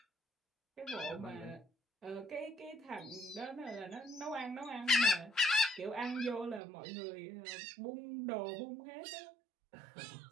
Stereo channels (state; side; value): drops out; left; at 6.6 s